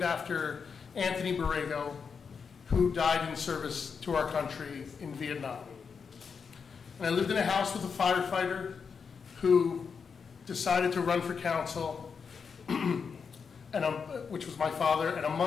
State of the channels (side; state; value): right; quieter; 5.9 dB